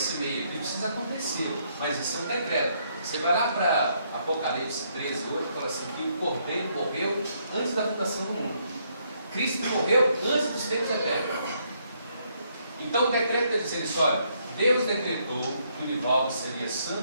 meio aqui precisa acontecer, mas isso é um decreto. Você vai lá para Apocalipse 13 hoje e fala assim, que o Cordeiro morreu antes da fundação do mundo. Cristo morreu antes dos tempos eternos. Então o decreto está dizendo isso, olha, Deus decretou que o Nivaldo seria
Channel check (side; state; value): both; inverted; correlation -0.72